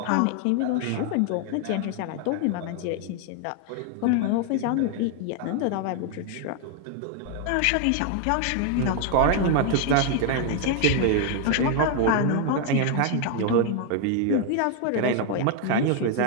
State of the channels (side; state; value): both; different; correlation 0.01